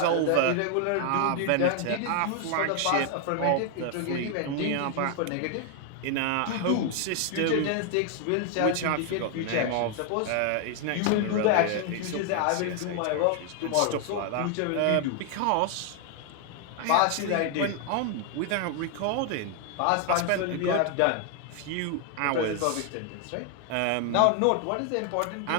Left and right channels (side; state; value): both; different; correlation 0.00